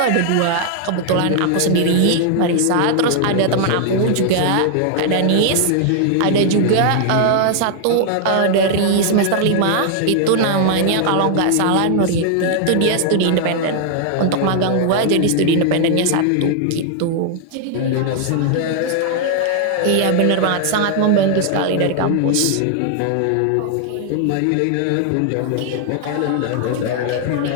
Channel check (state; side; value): different; both; correlation 0.00